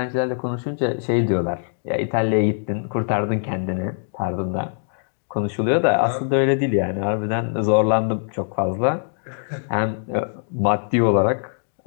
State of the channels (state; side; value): silent; right; digital silence